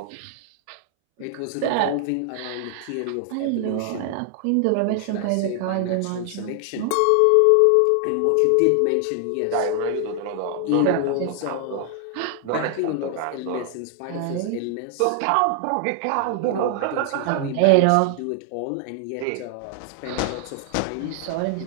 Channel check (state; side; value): different; both; correlation 0.00